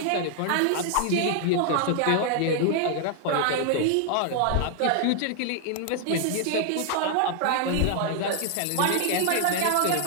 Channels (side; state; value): both; different; correlation 0.00